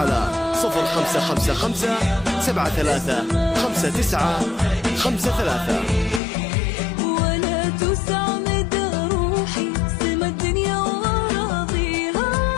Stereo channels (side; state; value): right; drops out; at 6.2 s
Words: 0555 735953. ولا تسعد روحي سما الدنيا وراضيها،